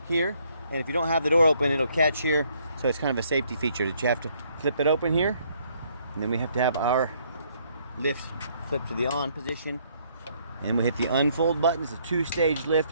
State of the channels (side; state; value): both; inverted; correlation -0.67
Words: here. And if you don't have the door open, it'll catch here. So it's kind of a safety feature that you have to flip it open here. And then we have to have our lift flip to the on position. And we hit the unfold button. It's a two-stage